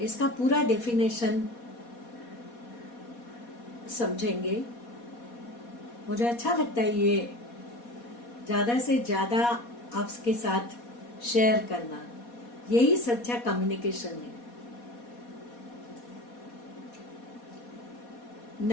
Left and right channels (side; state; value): right; late; 4.2 ms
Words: इसका पूरा डेफिनेशन समझेंगे। मुझे अच्छा लगता है ये ज्यादा से ज्यादा आपके साथ शेयर करना, यही सच्चा कम्युनिकेशन है।